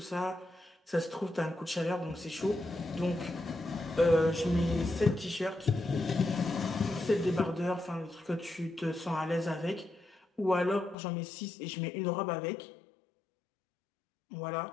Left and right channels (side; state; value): right; drops out; at 11.0 s